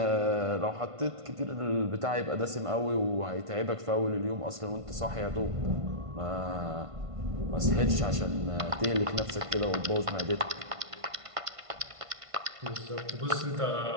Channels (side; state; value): left; late; 1.5 ms